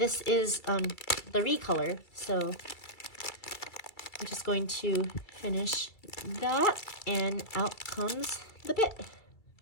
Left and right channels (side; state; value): right; late; 2.3 ms